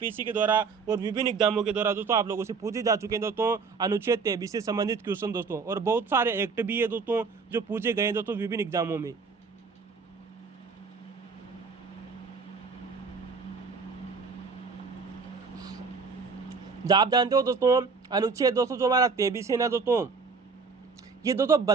के द्वारा और विभिन्न एग्जामों के द्वारा दोस्तों आप लोगों से पूछे जा चुके हैं दोस्तों अनुच्छेद 23 से संबंधित क्वेश्चन दोस्तों, और बहुत सारे एक्ट भी है दोस्तों जो पूछे गए हैं दोस्तों विभिन्न एग्जामों में। आप जानते हो दोस्तों अनुच्छेद दोस्तों जो हमारा 23 है ना दोस्तों, ये दोस्तों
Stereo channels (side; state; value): left; quieter; 4.9 dB